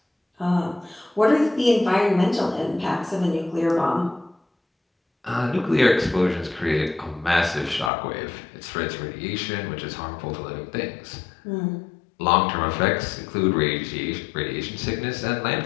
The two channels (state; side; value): drops out; right; at 7.9 s